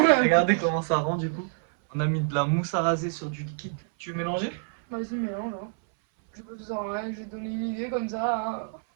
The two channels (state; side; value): silent; left; 57 dB below the other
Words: Regardez comment ça rend du coup. On a mis de la mousse à raser sur du liquide. Tu veux mélanger? Vas-y, mélange. Hein. Je peux tout en rien, je vais te donner une idée comme ça. Hein.